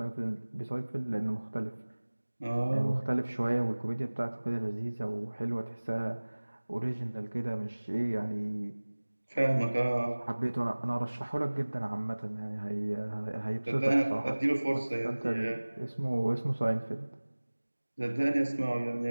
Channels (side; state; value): both; inverted; correlation -1.00